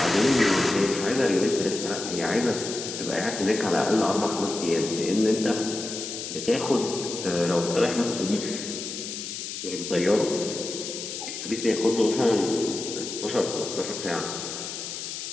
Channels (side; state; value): left; noise; hiss, 7 dB below the sound